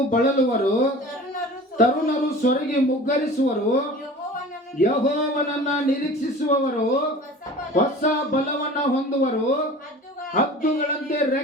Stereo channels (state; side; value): normal; both; correlation 0.40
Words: ಬಳಲುವರು, ತರುಣರು ಸೊರಗಿ ಮುಗ್ಗರಿಸುವರು. ಯೆಹೋವನನ್ನ ನಿರೀಕ್ಷಿಸುವವರು ಹೊಸ ಬಲವನ್ನ ಹೊಂದುವರು. ಹದ್ದುಗಳಂತೆ